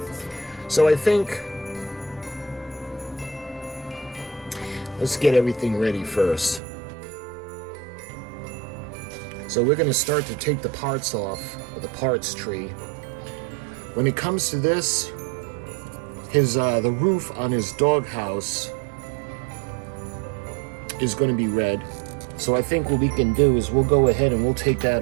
So I think, let's get everything ready first. So we're going to start to take the parts off of the parts tree. When it comes to this, the roof on his doghouse is going to be red. So I think what we can do is we'll go ahead and we'll take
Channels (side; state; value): left; drops out; at 6.6 s